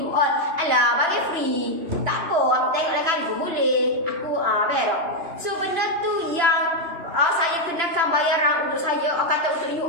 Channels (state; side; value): late; left; 2.9 ms